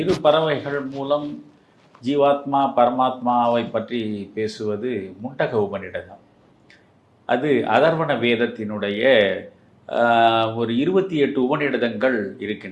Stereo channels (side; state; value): both; identical; correlation 1.00